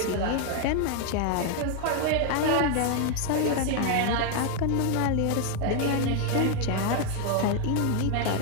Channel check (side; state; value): both; different; correlation 0.00